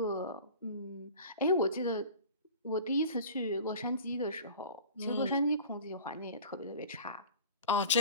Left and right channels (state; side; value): inverted; both; correlation -0.40